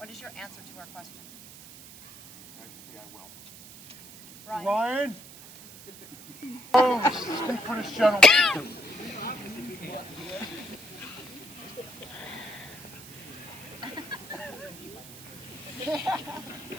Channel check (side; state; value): right; noise; hiss, 17 dB below the sound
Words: is your answer to our question? Majesty, I will. Ryan? Ryan? Oh, speak for this gentleman.